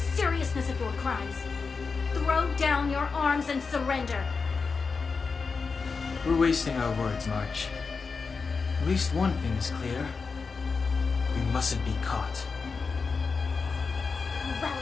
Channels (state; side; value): quieter; right; 4.8 dB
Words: of your crimes. Throw down your arms and surrender. We're wasting our words, March. At least one thing is clear. We mustn't be caught. Well,